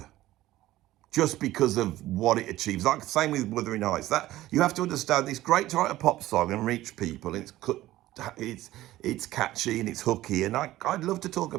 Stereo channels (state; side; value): quieter; left; 15.7 dB